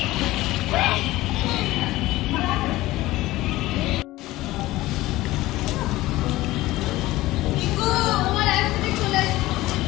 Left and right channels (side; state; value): right; quieter; 17.8 dB